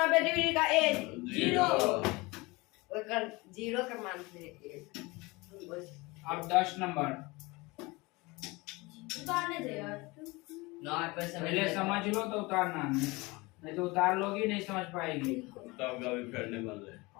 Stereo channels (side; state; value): right; quieter; 23.9 dB